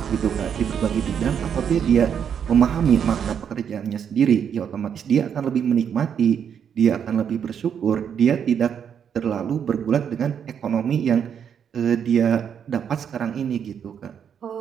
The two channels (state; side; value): quieter; left; 8.0 dB